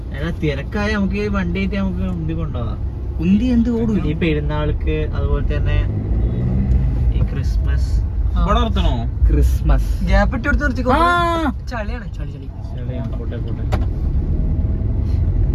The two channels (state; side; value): identical; both; correlation 1.00